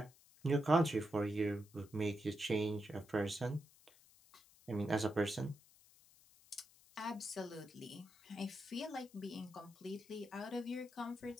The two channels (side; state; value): left; noise; hiss, 26 dB below the sound